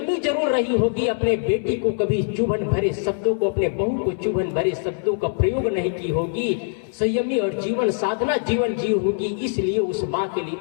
जरूर रही होगी, अपने बेटी को कभी चुभन भरे शब्दों को, अपने बहू को चुभन भरे शब्दों का प्रयोग नहीं की होगी, संयमी और जीवन साधना जीवन जी होगी, इसलिए उस माँ के लिए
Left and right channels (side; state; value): right; silent; 64 dB below the other